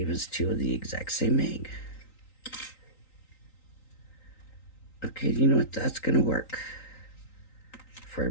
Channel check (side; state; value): right; late; 3.9 ms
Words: us two of the exact same egg. Okay, you know what? That's going to work for